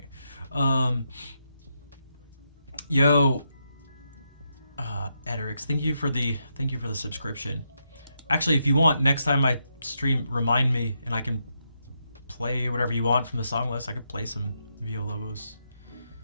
Yo, Ederix, thank you for the subscription. Actually, if you want, next time I stream, remind me and I can play whatever you want from the song list. I could play some Villalobos.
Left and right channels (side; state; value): both; inverted; correlation -0.81